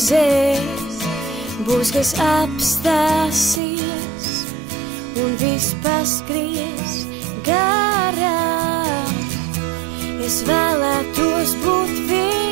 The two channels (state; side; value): drops out; left; at 3.6 s